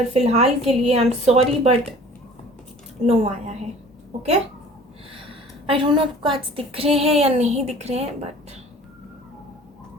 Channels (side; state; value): both; normal; correlation 0.47